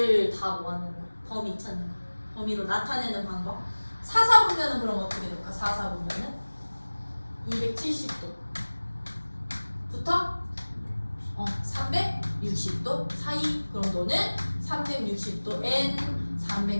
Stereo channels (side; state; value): both; inverted; correlation -1.00